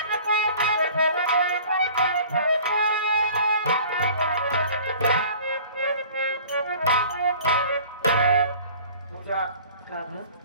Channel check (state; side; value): inverted; both; correlation -0.47